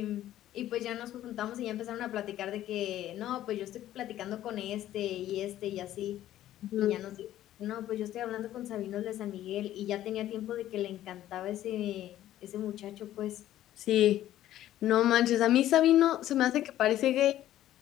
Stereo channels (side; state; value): right; quieter; 13.1 dB